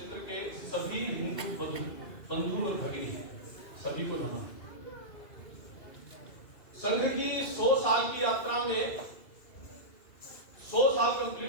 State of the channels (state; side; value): late; right; 2.4 ms